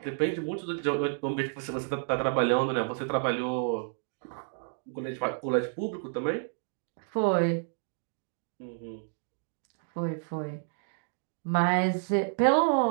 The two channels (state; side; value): silent; left; digital silence